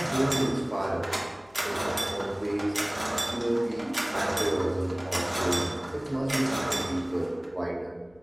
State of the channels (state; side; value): noise; left; hum, 30 dB below the sound